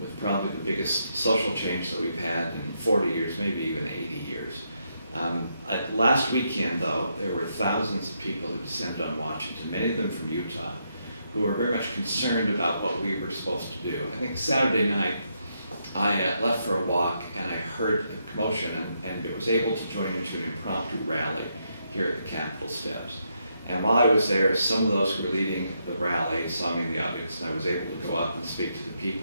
with probably the biggest social change that we've had in 40 years, maybe even 80 years. Last weekend, though, there were thousands of people who descended on Washington, many of them from Utah, who were very much concerned about what we were supposed to do. I think Saturday night, I left for a walk and I heard a commotion and was able to join into an impromptu rally here at the Capitol steps. And while I was there, some of those who were leading the rally saw me in the audience, and I was able to go up and speak to the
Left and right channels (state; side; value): inverted; both; correlation -0.79